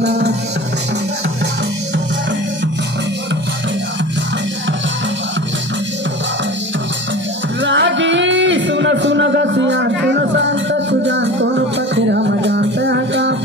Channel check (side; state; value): both; normal; correlation 0.36